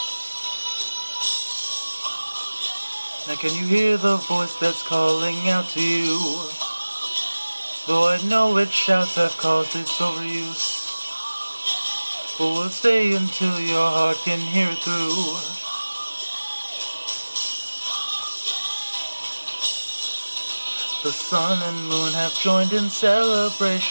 Now can you hear the voice that's calling out to you? Though I know its shouts have caused its overuse, but we'll stay until your heart can hear it through. The sun and moon have joined in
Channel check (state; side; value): inverted; both; correlation -1.00